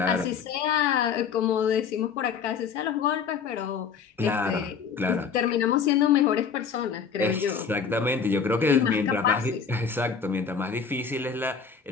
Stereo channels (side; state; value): right; quieter; 6.3 dB